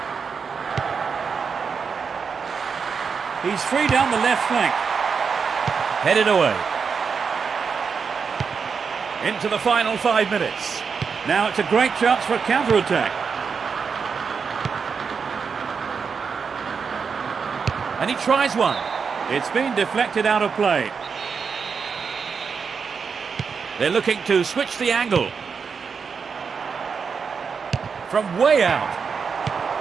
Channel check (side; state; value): left; quieter; 5.8 dB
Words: He's free down the left flank. Headed away. Into the final 5 minutes. Now it's a great chance for a counter-attack. And he tries one. It's been deflected out of play. They're looking to switch the angle. From way out.